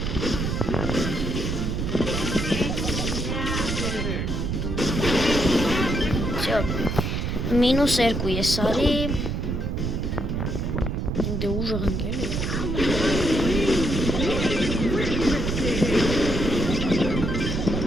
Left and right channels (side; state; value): right; noise; rumble, 1 dB below the sound